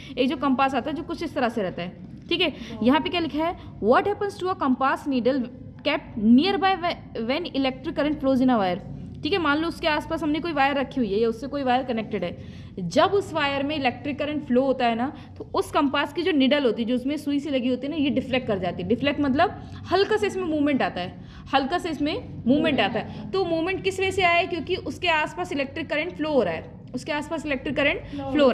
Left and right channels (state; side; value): identical; both; correlation 1.00